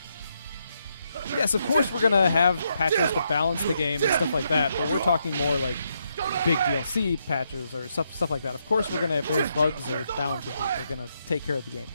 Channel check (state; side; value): inverted; both; correlation -0.79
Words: Yes, of course we're gonna have patches to balance the game and stuff like that, but we're talking more like big DLC patches or stuff like that. Of course we're gonna, if there's bugs or balances, we're gonna take care of the game.